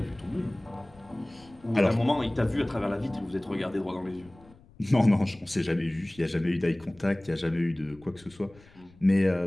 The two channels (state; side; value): noise; left; rumble, 25 dB below the sound